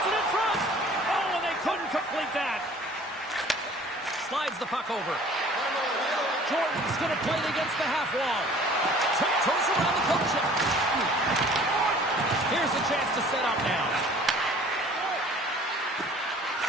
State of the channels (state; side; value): normal; both; correlation 0.50